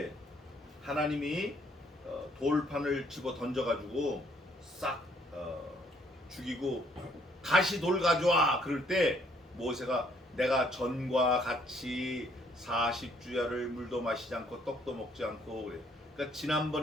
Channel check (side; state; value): both; normal; correlation 0.66